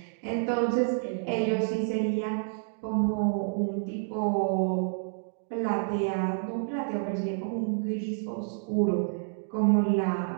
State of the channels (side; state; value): left; silent; digital silence